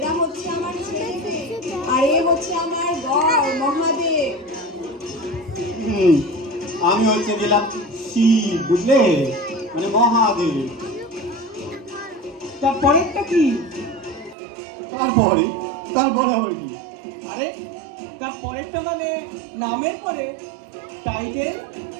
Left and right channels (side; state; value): left; drops out; at 14.4 s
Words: হচ্ছে আমার ছেলে মেয়ে, আর এ হচ্ছে আমার বর মহাদেব। আমি হচ্ছে গেলাম শিব, বুঝলে, মানে মহাদেব। তারপরেরটা কি? তারপরে আবার কি? আরে তারপরেরটা মানে নামের পরে টাইটেল,